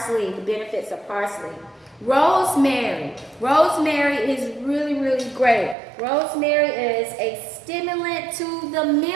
the benefits of parsley. Rosemary. Rosemary is really, really great. Rosemary is a stimulant to the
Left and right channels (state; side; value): drops out; left; at 5.8 s